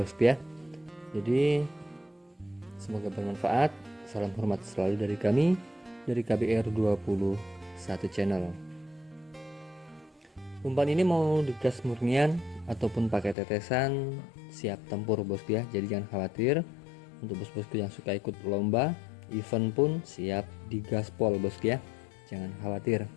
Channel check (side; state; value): right; drops out; at 13.4 s